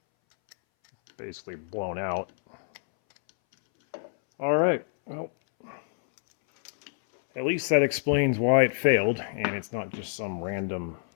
basically blown out. All right, well, at least that explains why it failed, and it's not just some random,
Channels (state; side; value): silent; right; 60 dB below the other